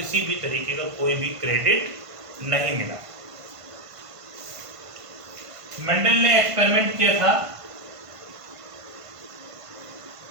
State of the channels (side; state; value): left; late; 1.5 ms